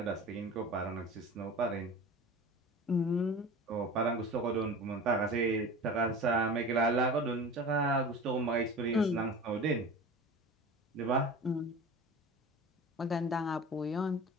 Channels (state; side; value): normal; both; correlation 0.36